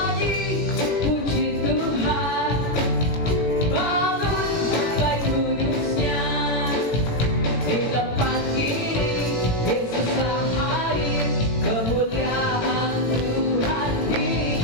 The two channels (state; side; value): late; right; 17 ms